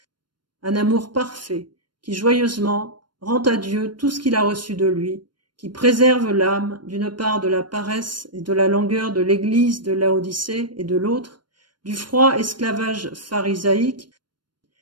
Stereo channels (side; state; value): left; late; 0.72 ms